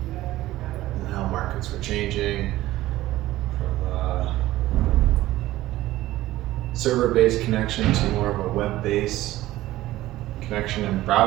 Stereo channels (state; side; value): quieter; left; 15.9 dB